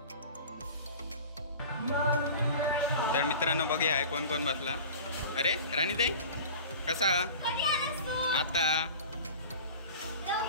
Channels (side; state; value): both; inverted; correlation -0.39